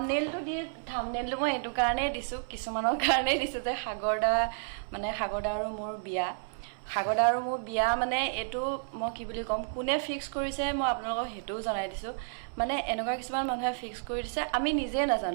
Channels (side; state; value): left; silent; 57 dB below the other